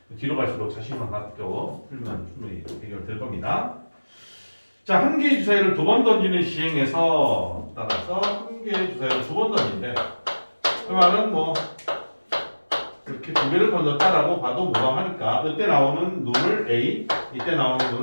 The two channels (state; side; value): inverted; both; correlation -1.00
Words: 뒤로 갈수록 자신만 갖고 풀면 충분히 해결될 겁니다. 자, 한 개의 주사위를 두 번 던지는 시행에서 따라서 한 개의 주사위를 두 번 던진대. 그 말은 이렇게 두 개를 던졌다라고 봐도 무방하니까 이때 나오는 룰을 A, 이때 나오는